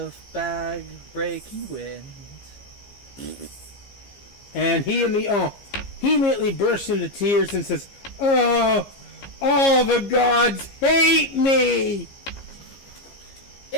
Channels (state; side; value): late; right; 15 ms